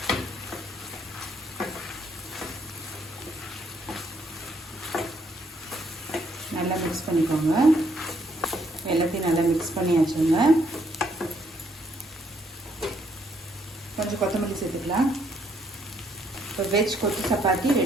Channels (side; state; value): both; normal; correlation 0.70